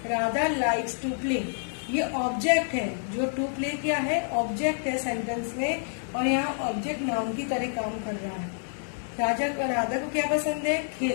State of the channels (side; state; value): right; silent; digital silence